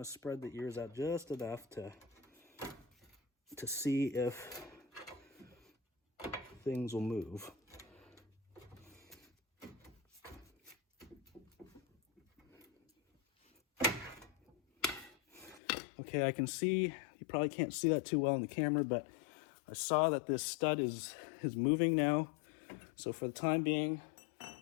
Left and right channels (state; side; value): drops out; right; at 15.6 s